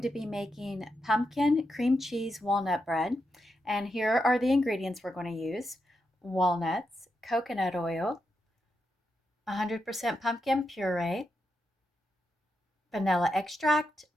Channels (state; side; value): normal; both; correlation 0.85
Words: to be making pumpkin cream cheese walnut bread. And here are the ingredients we're going to use. Walnuts, coconut oil, 100% pumpkin puree, vanilla extract,